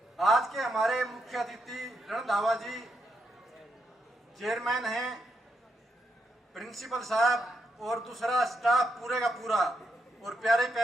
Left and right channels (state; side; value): normal; both; correlation 0.81